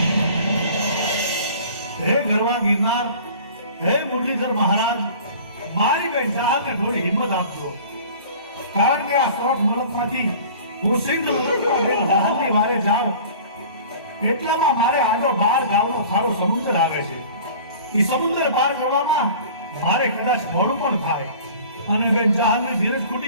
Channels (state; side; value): inverted; both; correlation -0.44